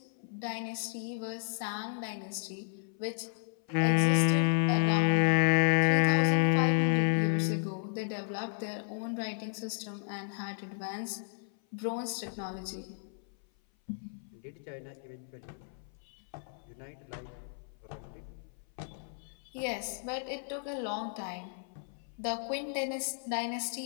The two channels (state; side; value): silent; right; 56 dB below the other